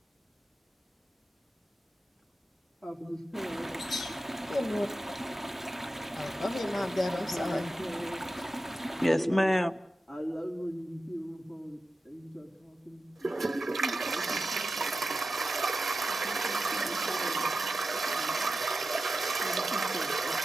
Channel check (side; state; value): both; normal; correlation 0.92